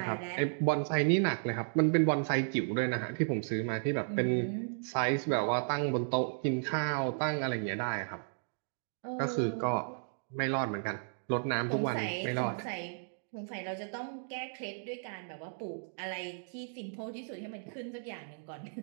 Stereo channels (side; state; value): left; silent; digital silence